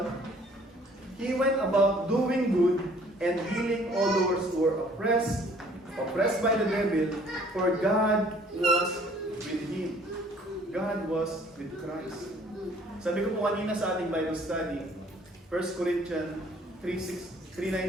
He went about doing good and healing all those who were oppressed by the devil, for God was with him. God was with Christ. Sabi ko po kanina sa ating Bible study, 1 Corinthians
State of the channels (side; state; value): both; normal; correlation 0.57